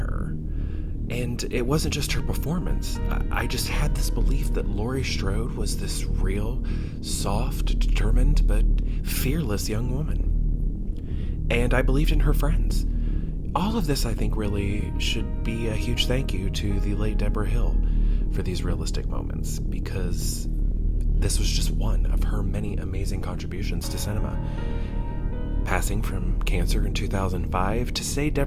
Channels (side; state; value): both; identical; correlation 1.00